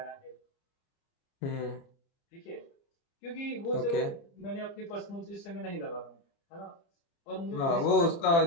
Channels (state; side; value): late; right; 30 ms